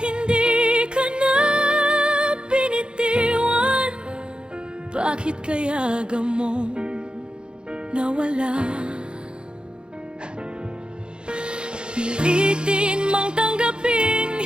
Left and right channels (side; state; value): left; late; 0.051 ms